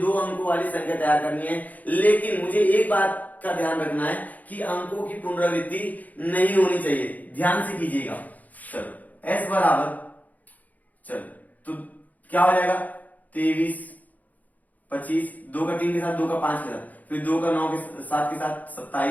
अंकों वाली संख्या तैयार करनी है। लेकिन मुझे एक बात का ध्यान रखना है कि अंकों की पुनरावृत्ति नहीं होनी चाहिए, ध्यान से कीजिएगा। चलो s बराबर, चलो तो क्या हो जाएगा 23, 25, 2 का 3 के साथ, 2 का 5 के साथ, फिर 2 का 9 के 7 के साथ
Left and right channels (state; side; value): late; right; 0.079 ms